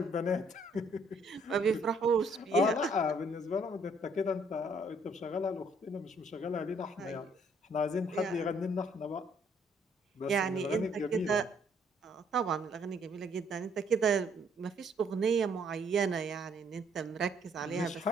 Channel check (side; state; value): both; normal; correlation 0.66